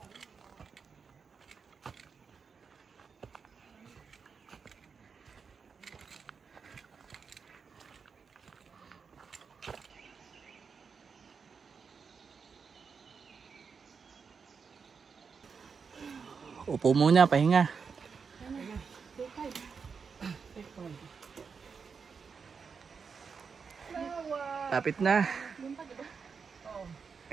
Upo muna, pahinga. Tapit na.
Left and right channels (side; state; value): left; quieter; 5.7 dB